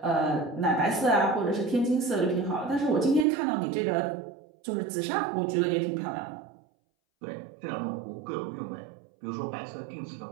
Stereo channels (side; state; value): left; drops out; at 3.2 s